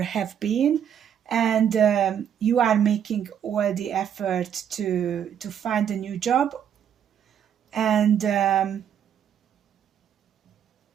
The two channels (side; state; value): left; quieter; 8.9 dB